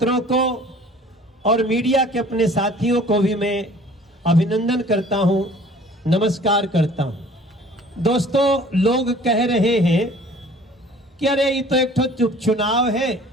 को और मीडिया के अपने साथियों को भी मैं अभिनंदन करता हूं, नमस्कार करता हूं। दोस्तों, लोग कह रहे हैं कि अरे ये तो एक तो चुनाव है,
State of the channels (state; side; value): normal; both; correlation 0.50